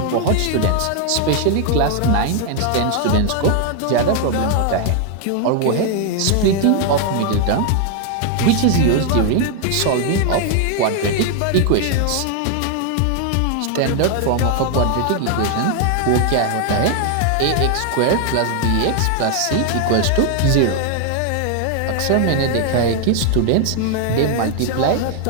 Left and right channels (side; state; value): both; different; correlation 0.00